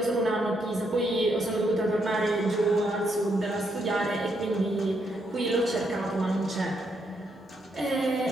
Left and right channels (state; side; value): normal; both; correlation 0.77